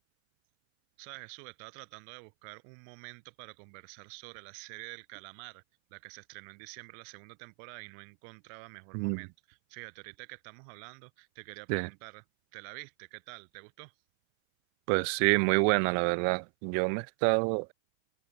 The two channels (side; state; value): left; silent; 54 dB below the other